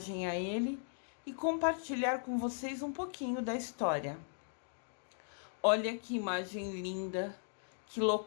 a ele e compartilhar com vocês um pouquinho da história. Olha que imagem linda, que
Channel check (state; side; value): silent; right; digital silence